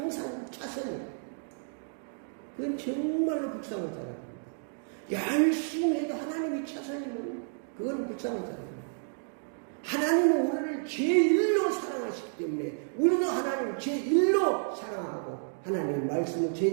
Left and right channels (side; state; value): left; silent; digital silence